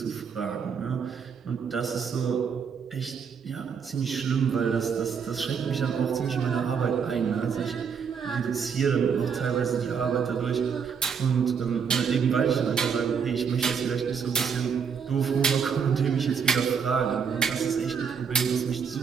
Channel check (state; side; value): quieter; left; 6.6 dB